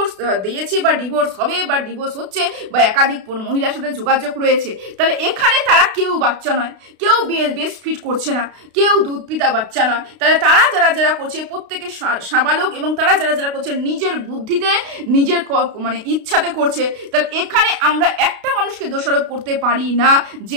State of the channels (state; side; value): late; left; 32 ms